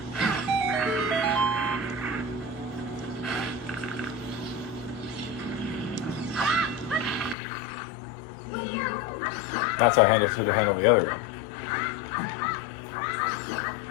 That's how I should have handled the other one.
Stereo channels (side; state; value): right; drops out; at 7.4 s